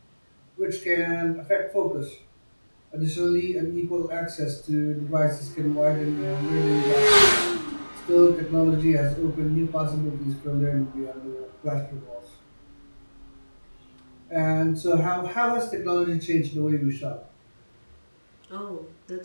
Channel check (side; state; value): both; inverted; correlation -1.00